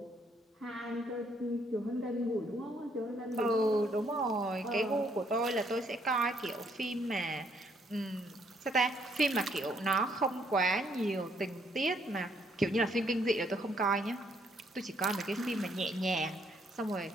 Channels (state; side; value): normal; both; correlation 0.69